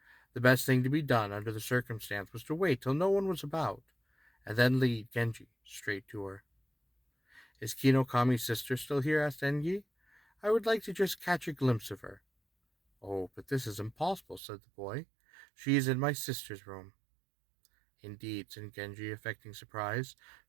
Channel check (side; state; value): left; drops out; at 14.4 s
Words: The best thing to be done under the circumstance was to wait till no one was about, and then lead Genji straight to her. "Is Kinokami's sister still here?" asked Genji. "I would like to just catch a glimpse of her." "Oh, but this is impossible," said the boy. "She is in my sister's room." "Indeed," said Genji, affecting surprise,